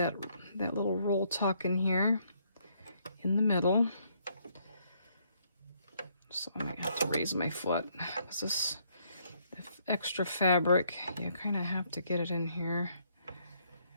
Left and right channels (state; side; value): inverted; both; correlation -0.70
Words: little roll tuck in here in the middle. So I might have to raise my foot, because this extra fabric, you kind of have to get it in here.